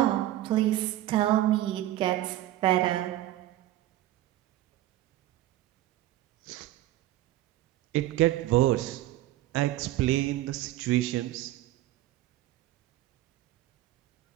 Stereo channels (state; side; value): quieter; left; 14.9 dB